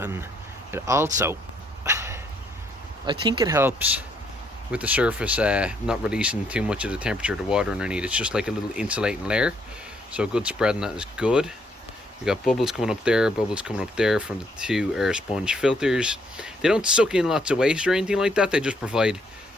it also, I think it helps with the surface not releasing too much of the temperature of the water underneath. It's just like a little insulating layer, so a good spread on that is good. We got bubbles coming up there, bubbles coming up there from the 2 air sponge filters. They don't suck in lots of waste or anything like that, they just provide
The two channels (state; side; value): normal; both; correlation 0.70